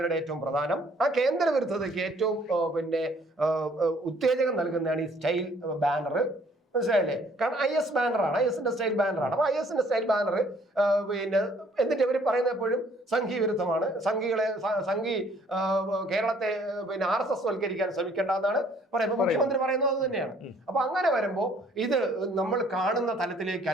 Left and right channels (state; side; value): normal; both; correlation 0.60